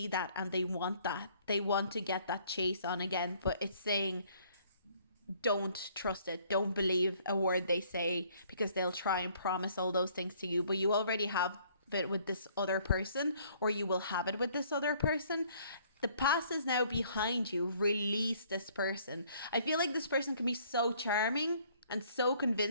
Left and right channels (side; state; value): both; inverted; correlation -0.61